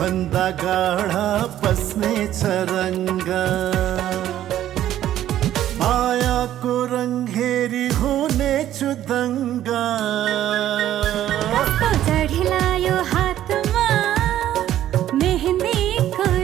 भन्दा गाढा बस्नेछ रङ्ग मायाको रङ हेरी हुनेछु दङ्गा कस्तो चढिलायो हातमा मेहन्दीको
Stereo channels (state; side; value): quieter; left; 12.3 dB